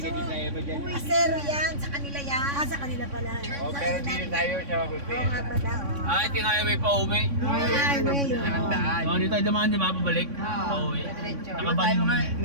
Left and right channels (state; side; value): late; left; 3.6 ms